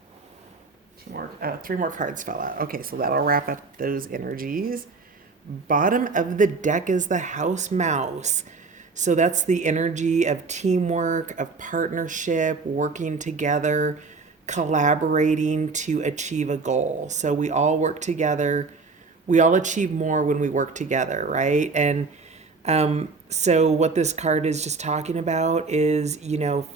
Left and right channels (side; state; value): left; quieter; 4.2 dB